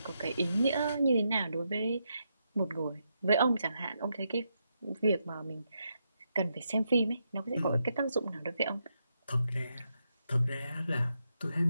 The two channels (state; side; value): inverted; both; correlation -0.82